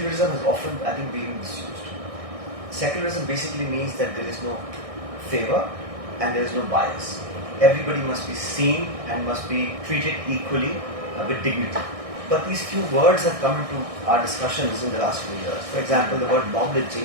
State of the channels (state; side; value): late; left; 1.6 ms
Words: has often, I think, been misused. Secularism basically means that there is no favor and there is no bias. Everybody must be seen and must be treated equally with dignity. But these few words have come into our discussions in the last few years. For example, the word mob